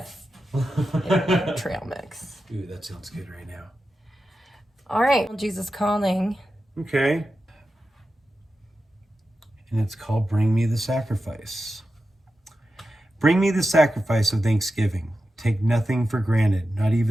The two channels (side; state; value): both; normal; correlation 0.91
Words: Trail mix. Ooh, that sounds good right now. All right. Jesus Calling. Okay. And it's called Bring Me the Sacrifice. Bring me the sacrifice of thanksgiving. Take nothing for granted, not